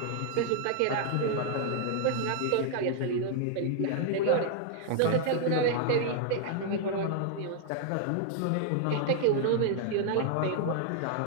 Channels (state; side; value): different; both; correlation 0.00